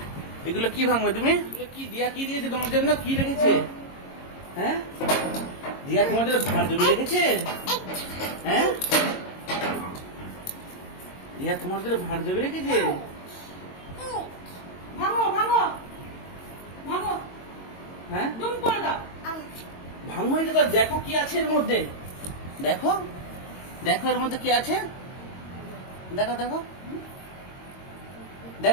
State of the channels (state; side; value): late; right; 22 ms